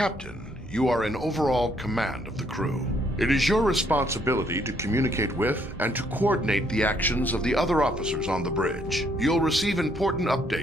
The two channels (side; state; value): both; normal; correlation 0.69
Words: you are in overall command of the crew. It is your responsibility to communicate with and to coordinate the actions of the other officers on the bridge. You'll receive important